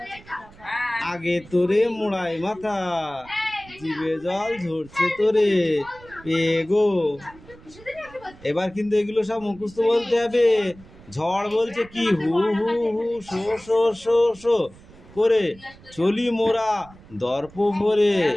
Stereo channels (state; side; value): noise; right; rumble, 22 dB below the sound